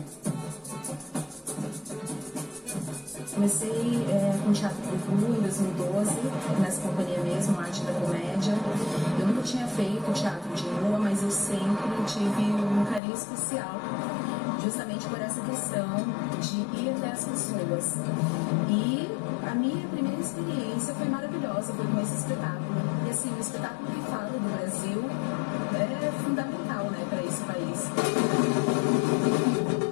Comecei com teatro de rua em 2012, nessa companhia mesmo, Arte da Comédia. Eu nunca tinha feito teatro de rua, mas eu sempre tive um carinho especial, justamente por essa questão de ir até as pessoas. E a minha primeira experiência foi maravilhosa, foi com esse espetáculo. E assim, um espetáculo que fala do Brasil é fundamental, né, para esse país.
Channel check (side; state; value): right; drops out; at 13.0 s